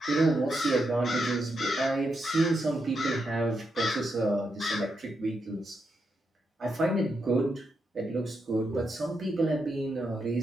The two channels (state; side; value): normal; both; correlation 0.83